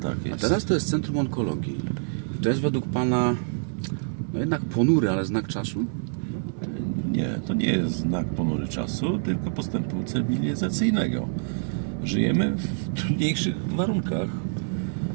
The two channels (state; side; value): silent; left; 61 dB below the other